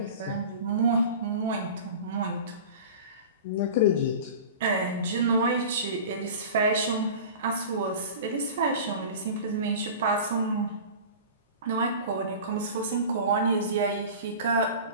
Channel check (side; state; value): both; inverted; correlation -0.35